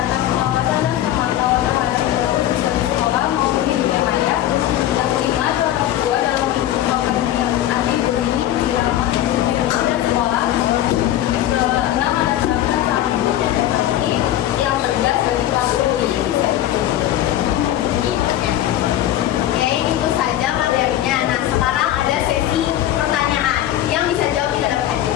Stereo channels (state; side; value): quieter; right; 12.8 dB